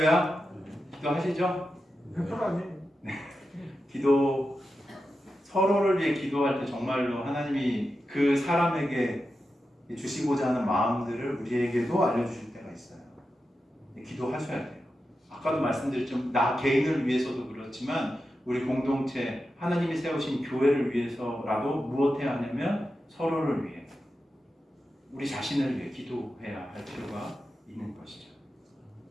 기도하시죠? 편하니. 기도 서로를 위해 기도할 때 정말로 하나님이 그 사람에게 주시고자 하는 마음들을 우리에게도 알려주실 때가 있어요. 기도하셔야 돼요. 아까도 말씀드렸지만 나 개인을 위해서도 그렇지만 우리 공동체 하나님이 세우신 교회를 위해서라도 무엇해야 하냐면 서로를 위해 우리 자신을 위해 기도해야 할 필요가 있는 것이죠.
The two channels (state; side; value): normal; both; correlation 0.90